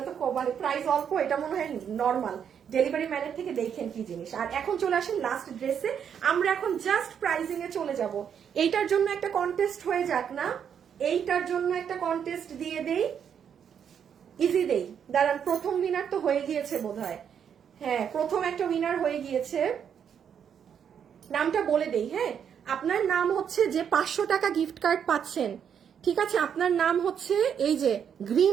তো মানে প্রাইস অল্প, এটা মনে হয় নর্মাল, ডেলিভারি ম্যানের থেকে দেখেন কি জিনিস। আর এখন চলে আসেন লাস্ট ড্রেসে, আমরা এখন জাস্ট প্রাইজিং এ চলে যাব, এইটার জন্য একটা কন্টেস্ট হয়ে যাক না, এইটার জন্য একটা কন্টেস্ট দিয়ে দেই, ইজি দেই, দাঁড়ান প্রথম উইনার তো হয়ে গিয়েছে বোধহয়, হ্যাঁ প্রথম একটা উইনার হয়ে গিয়েছে, নামটা বলে দেই, হ্যাঁ আপনার নাম হচ্ছে যে 500 টাকা গিফট কার্ড পাচ্ছেন, ঠিক আছে আপনার নাম হচ্ছে এই যে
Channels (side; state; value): left; quieter; 8.0 dB